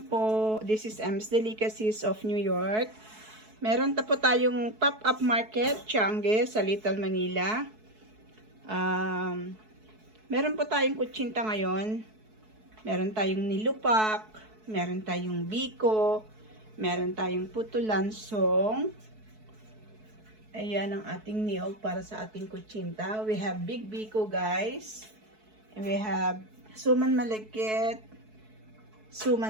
po. This is Ems Delicacies of New York. Meron po tayong pop-up market, Tiangge, sa Little Manila. Meron po tayong kutsinta ngayon. Meron tayong nilupak, meron tayong biko, meron tayong puto lansong. Ayan ang ating niyog para sa ating kutsinta. We have big biko, guys. And we have suman malagkit,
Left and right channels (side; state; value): left; late; 4.6 ms